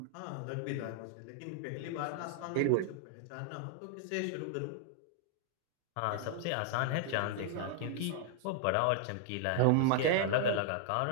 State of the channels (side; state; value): both; different; correlation 0.00